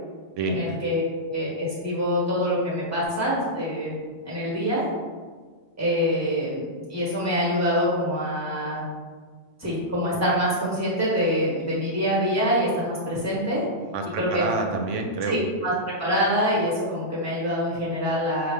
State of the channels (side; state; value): both; normal; correlation -0.11